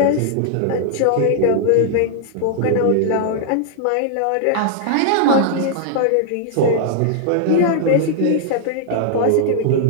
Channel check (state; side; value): different; both; correlation -0.01